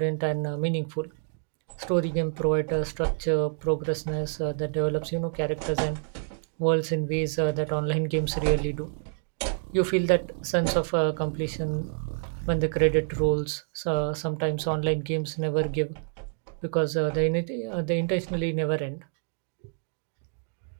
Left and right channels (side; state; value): left; silent; 59 dB below the other